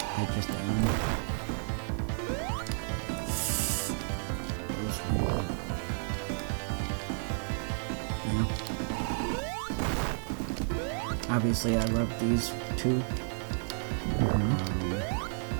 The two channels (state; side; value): silent; left; digital silence